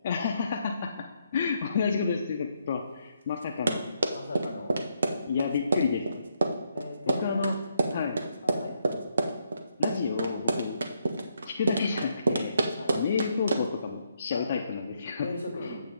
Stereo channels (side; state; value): both; inverted; correlation -0.76